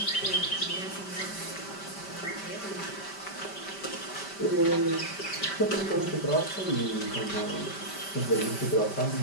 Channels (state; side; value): late; right; 5.1 ms